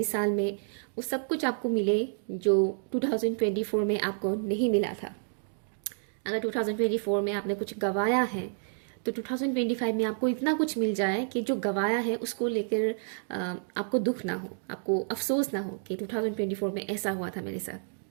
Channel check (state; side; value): silent; left; digital silence